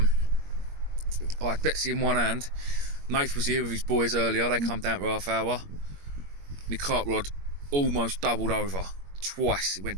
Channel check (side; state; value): left; late; 21 ms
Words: had Betsy in one hand. Nath was here with his boys earlier. They come down for half hour. My cart rod almost doubled over twice. It